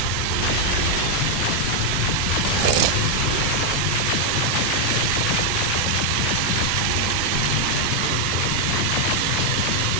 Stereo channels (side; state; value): both; different; correlation 0.00